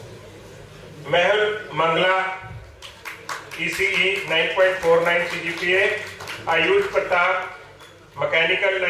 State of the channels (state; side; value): identical; both; correlation 1.00